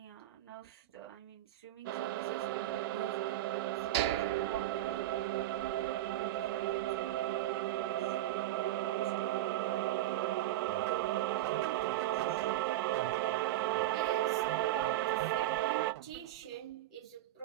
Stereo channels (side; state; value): left; quieter; 14.5 dB